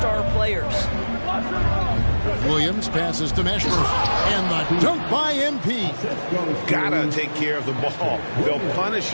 players. Williams passes to Meshburn, and the dunk by MP. Gotta take care of the ball. They'll punish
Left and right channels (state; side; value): inverted; both; correlation -1.00